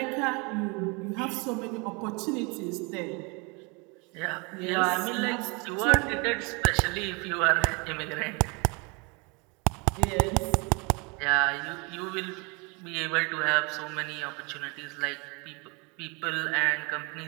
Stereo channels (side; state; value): left; quieter; 30.2 dB